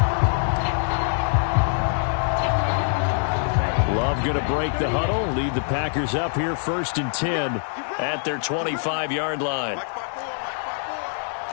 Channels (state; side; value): silent; right; digital silence